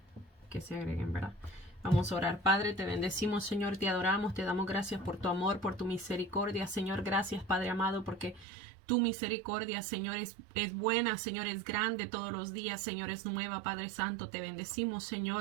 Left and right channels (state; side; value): drops out; left; at 8.5 s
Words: se agreguen, ¿verdad? Vamos a orar. Padre, te bendecimos, Señor, te adoramos, te damos gracias por tu amor, por tu misericordia, Señor. Gracias, Padre amado, porque tu misericordia, Señor, es buena, Señor, es grande todos los días, Señor, es nueva, Padre Santo. Te bendecimos,